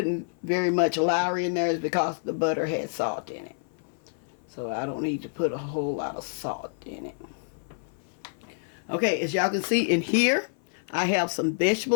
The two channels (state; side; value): silent; right; 55 dB below the other